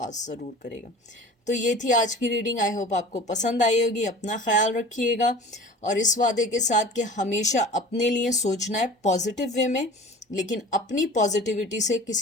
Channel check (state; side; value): normal; both; correlation 0.40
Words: ज़रूर करेगा। तो ये थी आज की रीडिंग। आई होप आपको पसंद आई होगी। अपना ख्याल रखिएगा और इस वादे के साथ कि हमेशा अपने लिए सोचना है पॉजिटिव वे में, लेकिन अपनी पॉजिटिविटी से